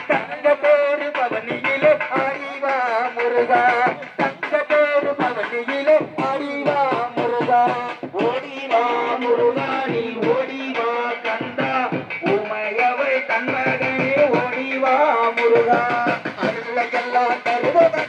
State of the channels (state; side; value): identical; both; correlation 1.00